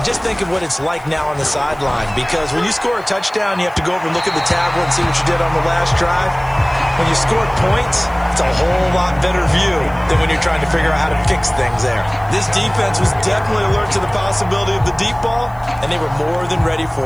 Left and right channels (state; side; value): noise; left; hiss, 29 dB below the sound